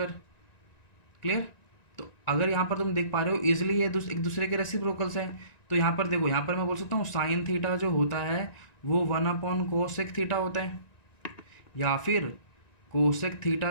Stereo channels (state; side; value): late; right; 1.9 ms